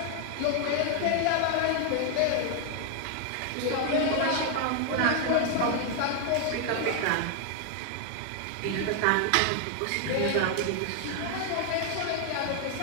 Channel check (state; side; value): different; both; correlation 0.00